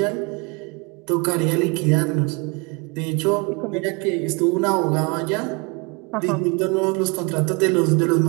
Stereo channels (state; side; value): quieter; left; 29.4 dB